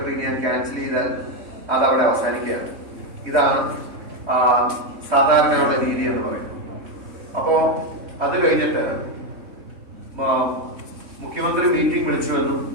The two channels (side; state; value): left; late; 3.6 ms